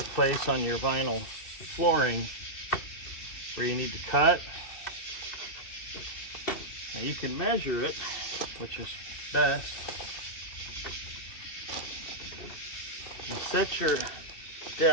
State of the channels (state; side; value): late; right; 2.7 ms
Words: place on your vinyl flooring where you need to cut. Now you can measure it, which is best. You set your